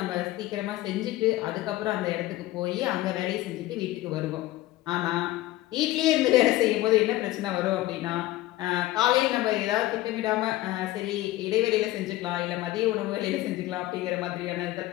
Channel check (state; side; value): quieter; right; 16.7 dB